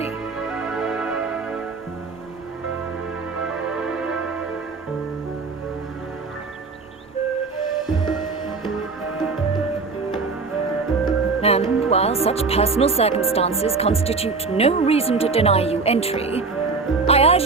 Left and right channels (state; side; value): quieter; left; 4.3 dB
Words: And while such personal circumstances constitute no reason to deny you entry, I urge